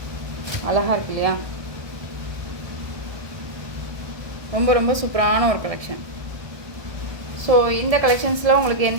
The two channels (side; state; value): left; late; 1.2 ms